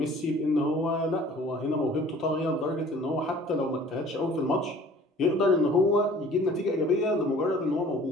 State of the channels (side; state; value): both; normal; correlation 0.50